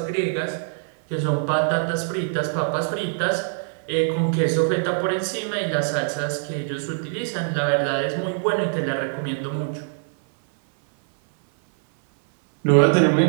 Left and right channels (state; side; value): silent; left; 57 dB below the other